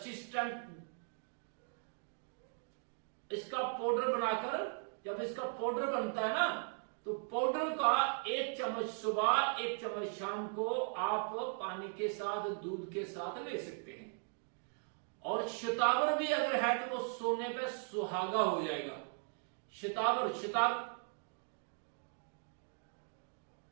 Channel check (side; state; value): left; silent; 52 dB below the other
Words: इसका पाउडर बनाकर, जब इसका पाउडर बनता है ना, तो पाउडर का 1 चम्मच सुबह 1 चम्मच शाम को आप पानी के साथ, दूध के साथ ले सकते हैं। और शतावर भी अगर है तो वो सोने पे सुहागा हो जाएगा।